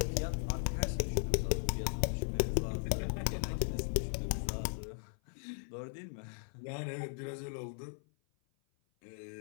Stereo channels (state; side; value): silent; right; 53 dB below the other